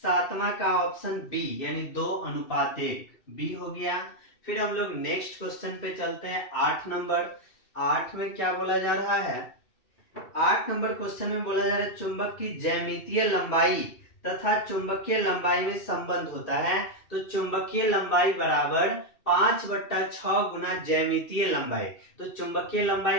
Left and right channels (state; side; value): late; right; 2.7 ms